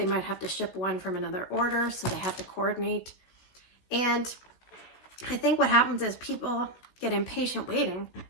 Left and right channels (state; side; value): late; right; 16 ms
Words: might have to ship one from another order, so they have to coordinate. And I think what happens is people get impatient waiting.